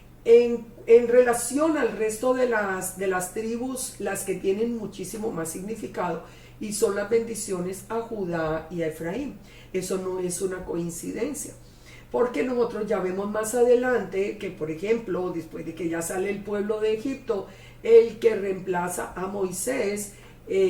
en relación al resto de las tribus, las que tienen muchísimo más significado, y son las bendiciones a Judá y a Efraín. Eso no es una coincidencia, porque nosotros ya vemos más adelante que, por ejemplo, después de que ya sale el pueblo de Egipto, el que reemplaza a Moisés,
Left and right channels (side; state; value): both; identical; correlation 1.00